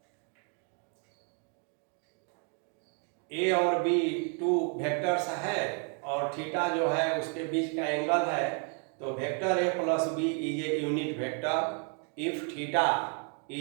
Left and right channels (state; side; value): quieter; left; 38.1 dB